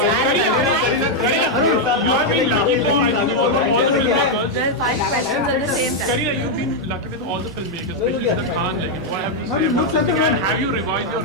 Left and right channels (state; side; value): normal; both; correlation -0.01